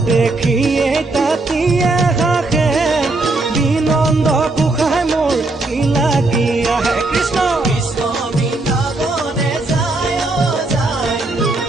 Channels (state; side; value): quieter; left; 3.1 dB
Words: দেখিয়ে তাঁতিয়ে হাসে